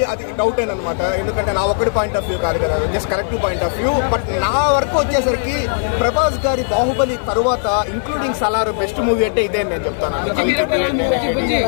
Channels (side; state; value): right; silent; 56 dB below the other